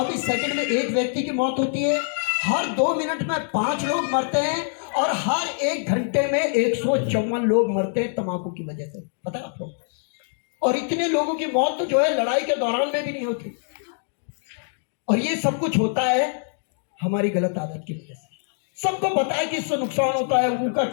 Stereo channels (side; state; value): right; silent; digital silence